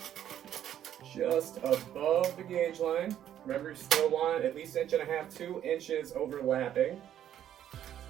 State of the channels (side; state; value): left; quieter; 10.7 dB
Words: just above the gauge line. Remember, you still want at least 1.5 inches, 2 inches overlapping.